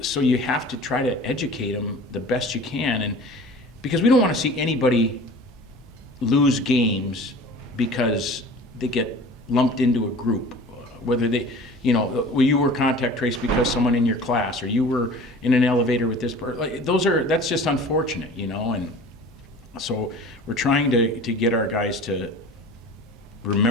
so you have to try to educate them the best you can. And because we don't want to see anybody lose games because they get lumped into a group, whether they, you were contact traced because someone in your class, or you were in an elevator with this person. That's just unfortunate, and so we're trying to get our guys to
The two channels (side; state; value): both; normal; correlation 0.42